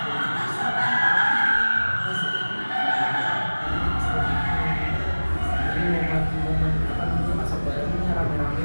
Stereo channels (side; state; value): both; inverted; correlation -1.00